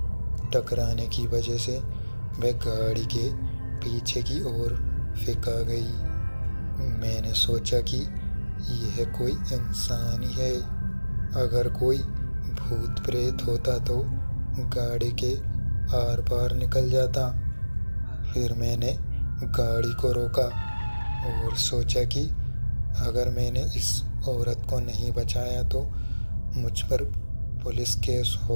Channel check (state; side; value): inverted; both; correlation -1.00